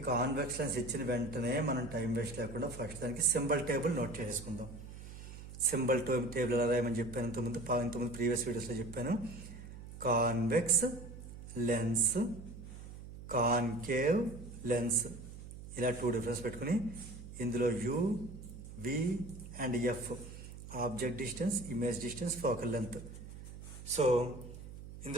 కాన్వెక్స్ లెన్స్ ఇచ్చిన వెంటనే మనం టైం వేస్ట్ లేకుండా ఫస్ట్ దానికి సింబల్ టేబుల్ నోట్ చేసుకుందాం. సింబల్ టేబుల్ ఎలా రాయమని చెప్పాను ఇంతకుముందు ప్రీవియస్ వీడియోస్లో చెప్పాను. కాన్వెక్స్ లెన్స్, కాన్కేవ్ లెన్స్, ఇలా 2 డిఫరెన్స్ పెట్టుకుని ఇందులో u, v and f object distance, image distance, focal length. So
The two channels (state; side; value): noise; right; hum, 13 dB below the sound